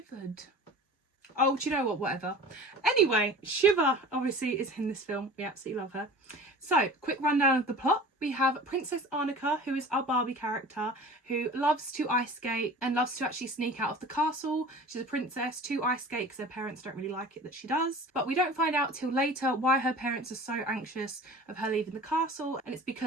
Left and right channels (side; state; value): both; normal; correlation 0.40